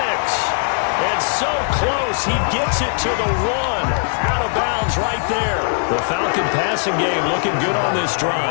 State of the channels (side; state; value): right; silent; 66 dB below the other